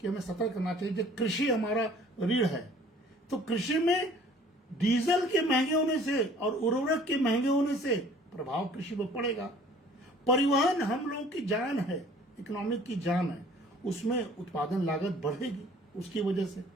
हमें सतर्क करना चाहिए। जो कृषि हमारा रीढ़ है, तो कृषि में डीजल के महंगे होने से और उर्वरक के महंगे होने से प्रभाव कृषि पर पड़ेगा। परिवहन हम लोगों की जान है, इकोनॉमिक की जान है, उसमें उत्पादन लागत बढ़ेगी उसकी वजह से।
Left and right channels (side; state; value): both; normal; correlation 0.53